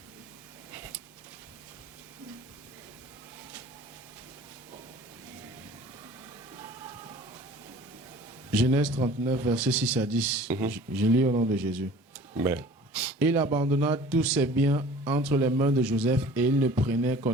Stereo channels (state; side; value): normal; both; correlation 0.46